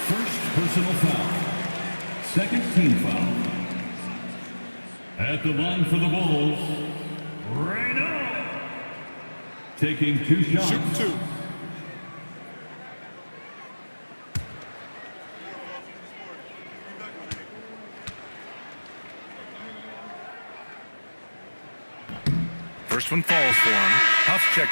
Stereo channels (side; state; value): both; inverted; correlation -1.00